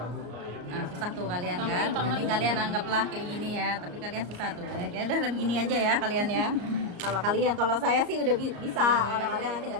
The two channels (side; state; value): left; late; 34 ms